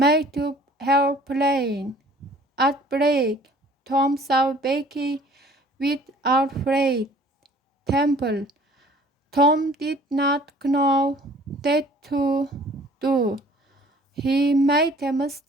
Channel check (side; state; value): both; normal; correlation 0.53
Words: up her plan. At break, Tom saw Becky with Alfred Temple. Tom did not know what to do. He made a